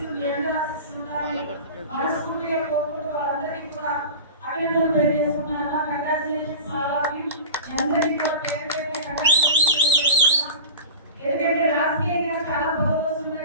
మీ అందరి ఆశీస్సులు ఉండాలని మనస్ఫూర్తిగా కోరుకుంటూ వాళ్ళందరికీ కూడా అభినందనలు తెలియజేస్తున్నాను. కంగ్రాచులేషన్స్ అందరికీ కూడా పేరు పేరు కంగ్రాచులేషన్స్ తెలియజేస్తున్నాను. ఎందుకంటే రాజకీయంగా చాలా పదవులు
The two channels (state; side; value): inverted; both; correlation -0.33